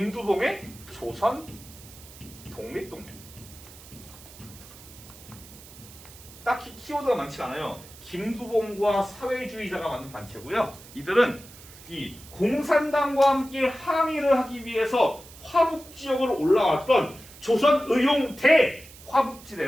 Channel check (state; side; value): noise; right; hiss, 19 dB below the sound